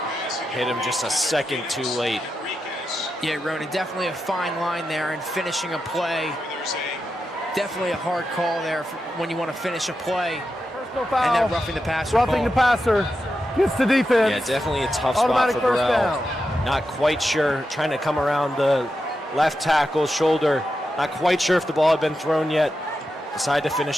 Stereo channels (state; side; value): normal; both; correlation 0.88